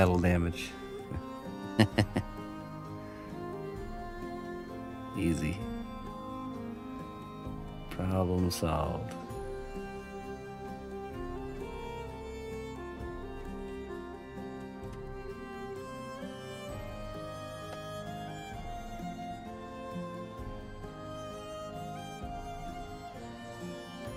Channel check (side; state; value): both; identical; correlation 1.00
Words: damage. Easy. Problem solved.